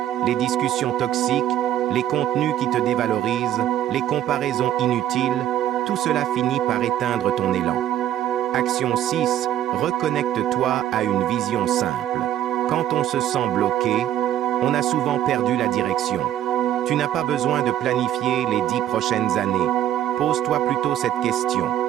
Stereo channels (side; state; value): left; quieter; 11.9 dB